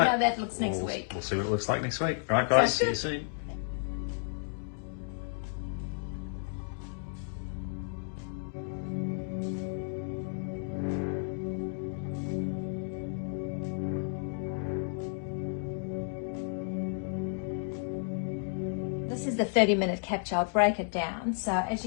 how that looks next week. We'll see what it looks like next week. All right, guys. See you Sounds soon. This is the 30-minute capture. I'll break it down. So as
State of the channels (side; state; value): right; silent; digital silence